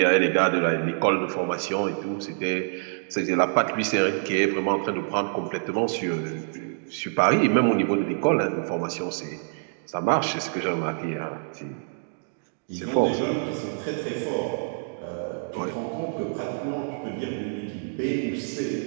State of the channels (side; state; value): left; silent; digital silence